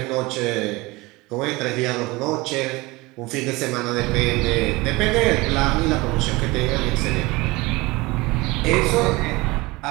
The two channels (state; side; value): quieter; left; 22.5 dB